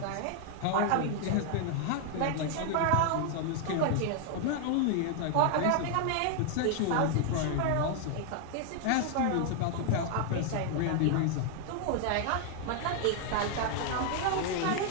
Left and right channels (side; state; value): both; different; correlation 0.00